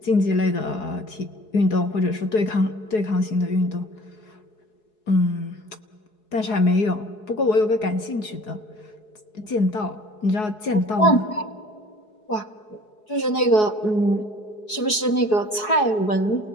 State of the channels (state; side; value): late; right; 4.7 ms